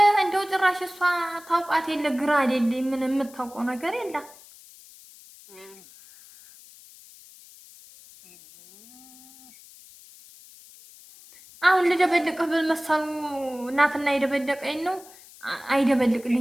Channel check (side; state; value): left; noise; hiss, 22 dB below the sound